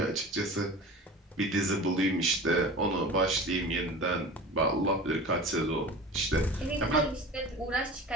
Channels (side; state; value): both; normal; correlation 0.36